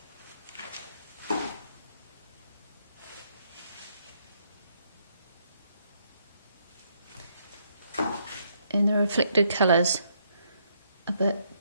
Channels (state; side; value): inverted; both; correlation -0.73